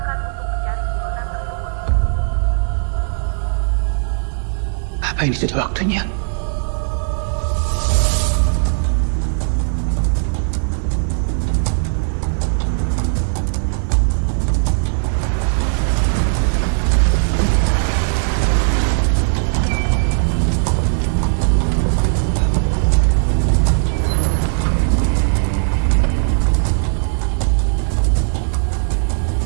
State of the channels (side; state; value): left; silent; digital silence